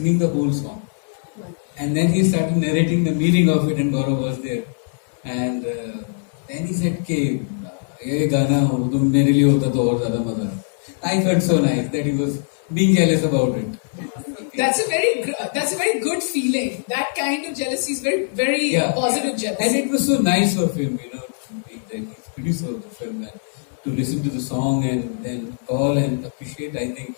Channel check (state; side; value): silent; right; 64 dB below the other